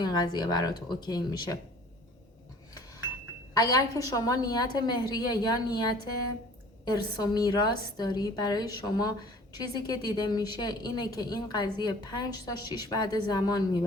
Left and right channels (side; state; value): both; normal; correlation 0.48